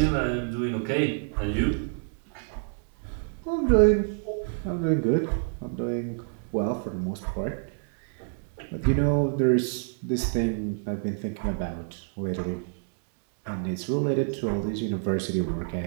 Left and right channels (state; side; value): silent; left; digital silence